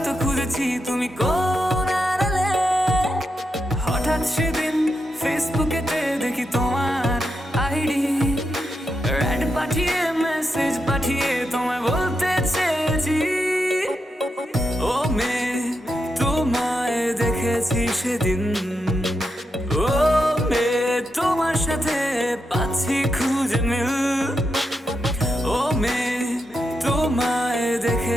খুঁজেছি, তুমি কোন আড়ালে। হঠাৎ সেদিন ফেসবুকেতে দেখি তোমার আইডি, অ্যাড পাঠিয়ে মেসেজ পাঠিয়ে তোমায় বলতে চেয়েছি, ও মেয়ে তোমায় দেখেছি সেদিন। ও মেয়ে তোমার সাথে পাচ্ছি খুঁজে মিল। ও মেয়ে তোমায়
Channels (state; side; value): normal; both; correlation 0.85